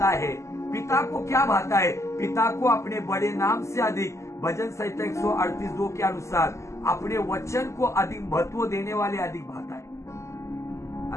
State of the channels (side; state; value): right; late; 0.14 ms